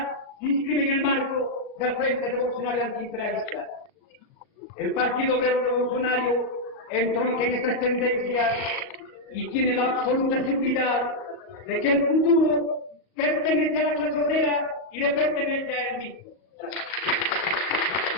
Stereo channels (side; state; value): right; late; 38 ms